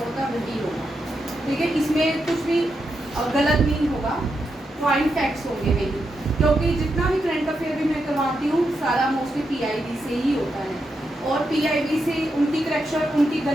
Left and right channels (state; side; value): normal; both; correlation 0.85